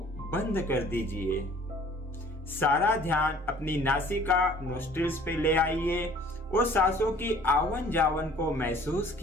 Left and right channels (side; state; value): both; normal; correlation 0.52